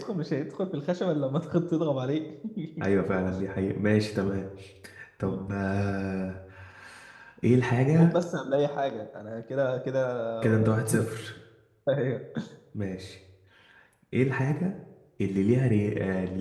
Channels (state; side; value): identical; both; correlation 1.00